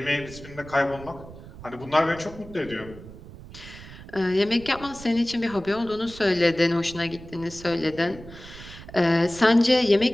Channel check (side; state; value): right; noise; rumble, 16 dB below the sound